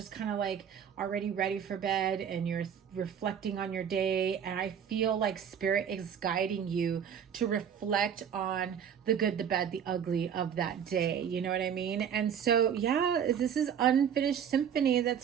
kind of like already ready for bed and you're reflecting on your day. And I feel like spirit is guiding you to reflect on the good, the bad, the ugly of that day. You know what I mean? And so, yeah, this is Unfinished Symphony.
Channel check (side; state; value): left; quieter; 8.3 dB